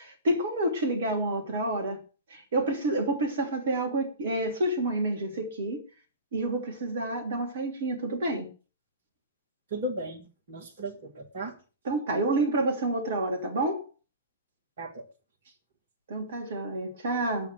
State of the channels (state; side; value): inverted; both; correlation -0.34